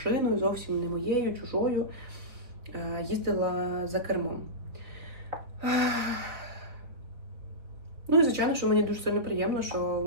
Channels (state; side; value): late; left; 4.2 ms